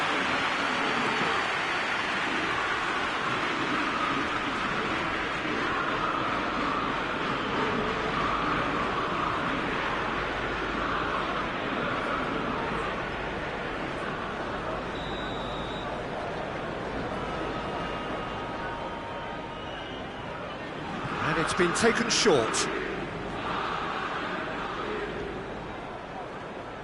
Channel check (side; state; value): both; identical; correlation 1.00